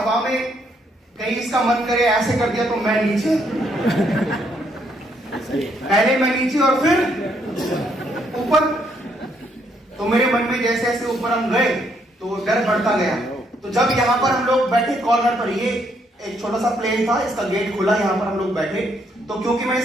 में कहीं इसका मन करे ऐसे कर दिया तो मैं नीचे, पहले मैं नीचे और फिर ऊपर। तो मेरे मन में जैसे जैसे ऊपर हम गए तो डर बढ़ता गया। तो जब यहाँ पर हम लोग बैठे कॉर्नर पर, ये एक छोटा सा प्लेन था, इसका गेट खुला, यहाँ पर हम लोग बैठे। तो क्योंकि मैं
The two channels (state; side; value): normal; both; correlation 0.72